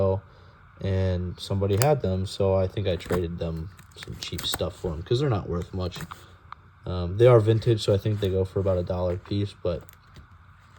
and somebody had them, so I think I traded them some cheap stuff for them, because they're not worth much. They are vintage, so I think they go for about $1 a piece, but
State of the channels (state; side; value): identical; both; correlation 1.00